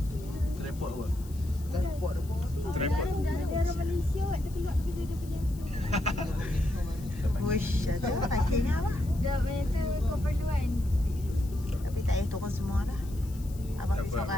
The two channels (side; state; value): left; noise; hiss, 22 dB below the sound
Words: kot. Tripod apa? Daerah Malaysia kot. Dia keluar pergi dia punya. Wush, ada parkingnya apa? Dah banyak tu keperluan. Tapi tak payah turun semua dah. Abang pergi